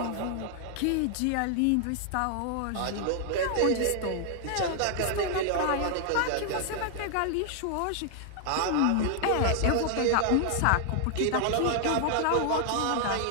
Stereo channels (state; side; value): different; both; correlation 0.00